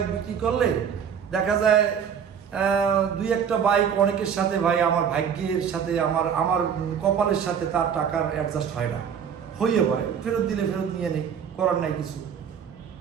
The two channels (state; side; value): quieter; left; 7.7 dB